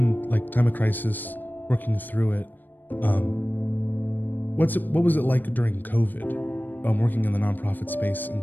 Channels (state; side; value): late; right; 0.090 ms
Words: like time of crisis, working through it. What was it like during COVID, working in the nonprofit space